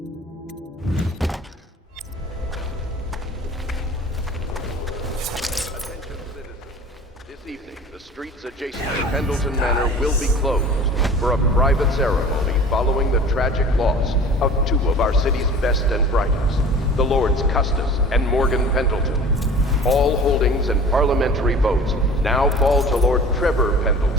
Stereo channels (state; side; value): normal; both; correlation 0.43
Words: Streets adjacent to Pendleton Manor will be closed for a private ceremony following the tragic loss of two of our city's best and brightest, the Lords Custis and Morgan Pendleton. All holdings and parliamentary votes now fall to Lord Trevor